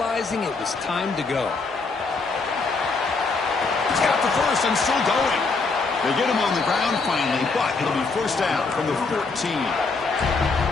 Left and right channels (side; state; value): right; quieter; 4.1 dB